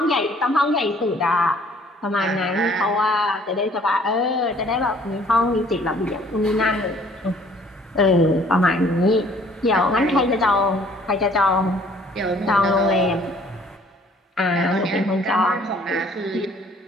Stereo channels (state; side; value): normal; both; correlation 0.57